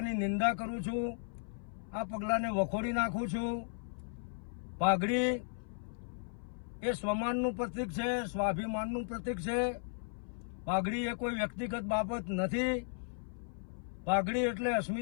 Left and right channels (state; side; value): silent; right; 54 dB below the other